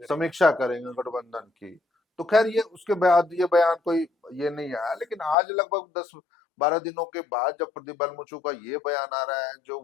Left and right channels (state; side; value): drops out; right; at 5.4 s